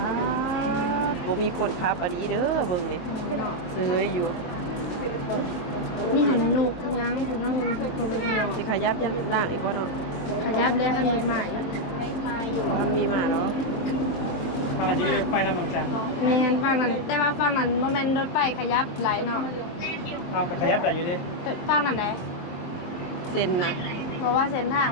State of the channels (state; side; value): late; right; 23 ms